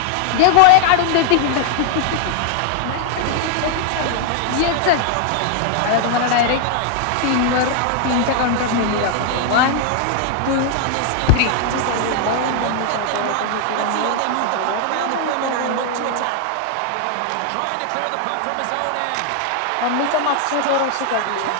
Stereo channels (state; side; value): different; both; correlation 0.00